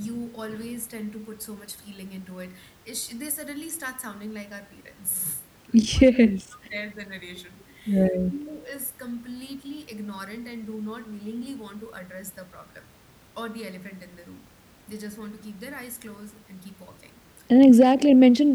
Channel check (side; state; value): both; identical; correlation 1.00